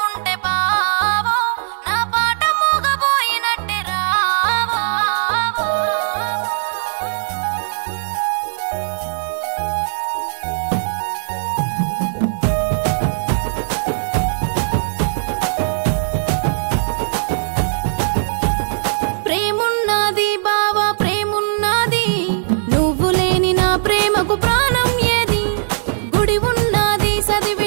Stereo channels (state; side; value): silent; left; 67 dB below the other